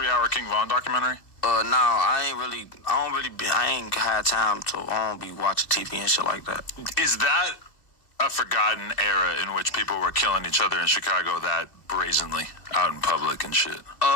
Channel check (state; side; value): late; right; 2.9 ms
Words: King Von documentary? No, I ain't had time to, I don't be watching TV and shit like that. Is that a forgotten era in which people were killing each other in Chicago that brazenly out in public and shit?